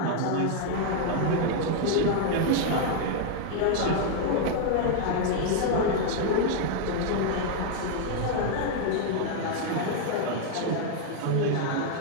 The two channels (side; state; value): both; different; correlation 0.00